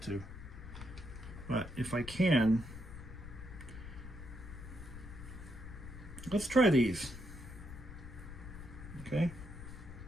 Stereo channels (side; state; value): left; noise; rumble, 11 dB below the sound